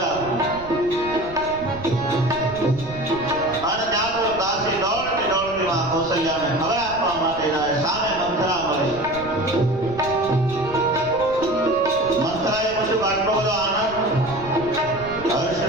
આપો. અને ત્યાં તો દાસી દોડતી દોડતી માં કૌશલ્યાને ખબર આપવા માટે જાય. સામે મંથરા મળી. મંથરાએ પૂછ્યું આટલો બધો આનંદ હર્ષ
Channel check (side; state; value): right; noise; rumble, 16 dB below the sound